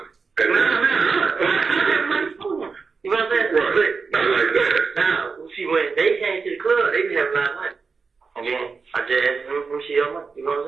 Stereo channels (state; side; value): quieter; left; 4.9 dB